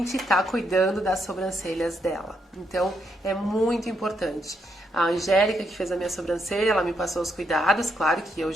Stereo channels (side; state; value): both; normal; correlation 0.78